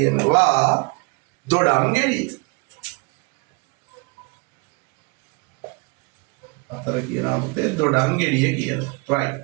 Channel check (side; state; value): left; quieter; 28.7 dB